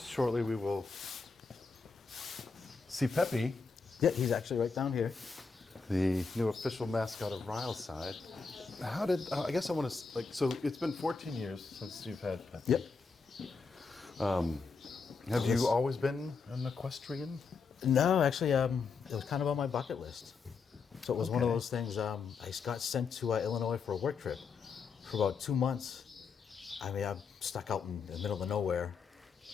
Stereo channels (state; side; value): quieter; right; 4.9 dB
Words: shortly we will see Peppy, Yeah, he's actually right down here. the new official mascot of Ryleside. How did, I guess I want to, like, so it's been 14 years since you've had Peppy. Yep. Have you always been an equestrian? No, actually, it was kind of on my bucket list. So it was one of Okay. those things. I got sent to Illinois for a work trip for about 2 months. I mean, I'm stuck out in the middle of nowhere,